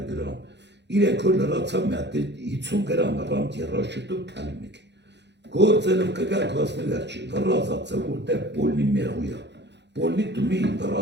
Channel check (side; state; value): left; late; 0.50 ms